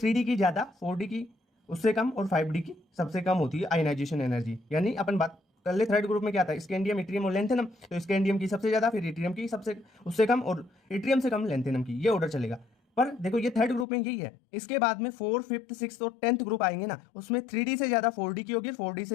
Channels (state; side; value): drops out; right; at 13.9 s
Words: की ज़्यादा, 4D की उससे कम और 5D की सबसे कम होती है आयनाइजेशन एनर्जी। यानी अपन बात कर ले थर्ड ग्रुप में क्या था, स्कैंडियम, इट्रियम और लेंथेनम, तो स्कैंडियम की सबसे ज़्यादा, फिर इट्रियम की सबसे उससे कम और इट्रियम से कम लेंथेनम की, ये ऑर्डर चलेगा। पर देखो ये थर्ड ग्रुप में यही है। इसके बाद में 4, 5th, 6th और 10th ग्रुप आएंगे ना, उसमें 3D से ज़्यादा 4D की होगी, 4D